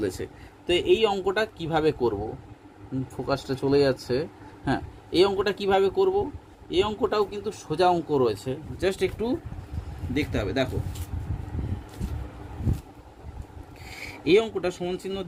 তো এই অঙ্কটা কিভাবে করব, ফোকাসটা চলে যাচ্ছে। হ্যাঁ, এই অঙ্কটা কিভাবে করব, এই অঙ্কটাও কিন্তু সোজা অঙ্ক রয়েছে, জাস্ট একটু দেখতে হবে। দেখো এই অঙ্কটা সমান চিহ্ন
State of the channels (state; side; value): identical; both; correlation 1.00